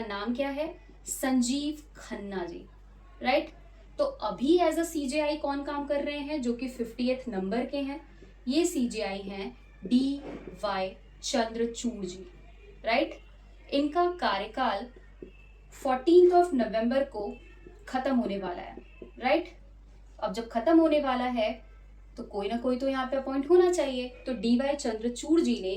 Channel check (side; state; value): both; identical; correlation 1.00